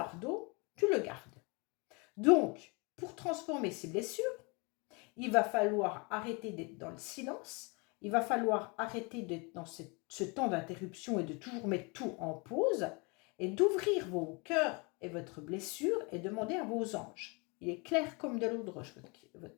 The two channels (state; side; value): quieter; right; 30.2 dB